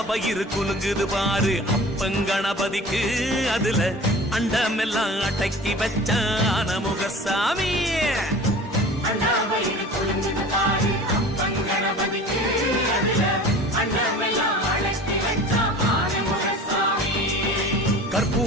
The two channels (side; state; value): both; normal; correlation 0.41